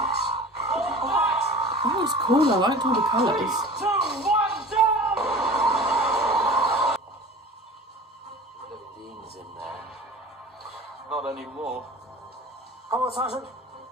That was cool. I liked all the colours. 3, 2, 1, jump! Dean's in there. Not anymore. Come on, Sergeant.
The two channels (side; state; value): both; normal; correlation 0.39